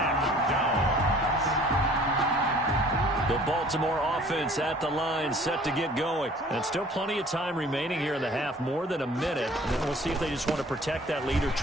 The Baltimore offense at the line, set to get going. And still plenty of time remaining here in the half, more than a minute. And then we'll see if they just want to protect that lead or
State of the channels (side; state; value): both; normal; correlation 0.52